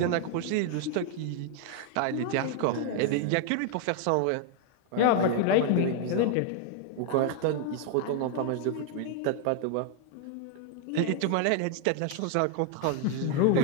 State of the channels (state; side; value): different; both; correlation 0.00